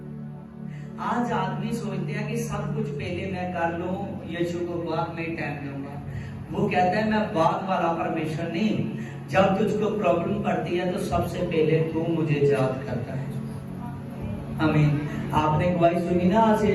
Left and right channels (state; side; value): identical; both; correlation 1.00